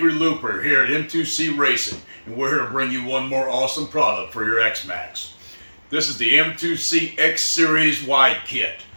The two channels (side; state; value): both; inverted; correlation -1.00